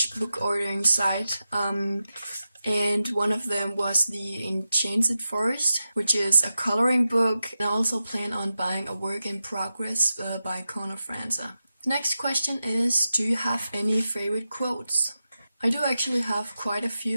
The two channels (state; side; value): inverted; both; correlation -0.91